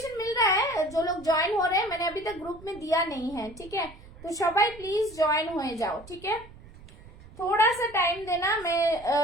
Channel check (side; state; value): right; noise; rumble, 20 dB below the sound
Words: मिल रहा है, जो लोग ज्वाइन हो रहे हैं, मैंने अभी तक ग्रुप में दिया नहीं है, ठीक है। तो सबाई प्लीज ज्वाइन हो जाओ, ठीक है। थोड़ा सा टाइम देना, मैं